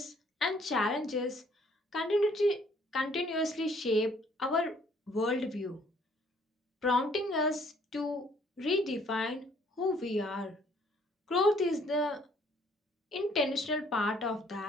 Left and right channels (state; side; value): normal; both; correlation 0.62